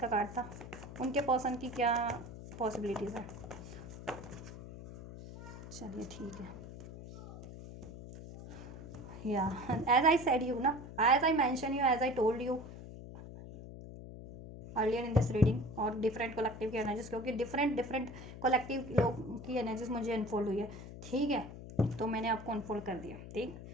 कार्ड था, उनके पर्सन की क्या पॉसिबिलिटीज़ है। चलिए ठीक है, या एज आई सेड यू ना, as I mention you, as I told you earlier in this reading, और डिफरेंट कलेक्टिव की एनर्जीज, क्योंकि डिफरेंट कलेक्टिव लोग की एनर्जीज मुझे अनफोल्ड हुई है, ठीक है, तो मैंने आपको अनफोल्ड कर दिया। ठीक,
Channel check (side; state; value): left; noise; hum, 12 dB below the sound